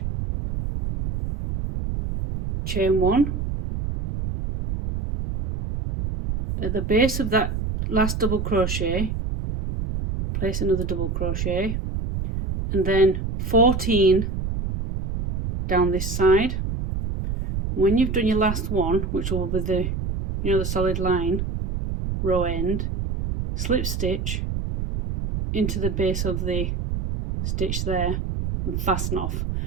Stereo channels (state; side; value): noise; right; rumble, 3 dB below the sound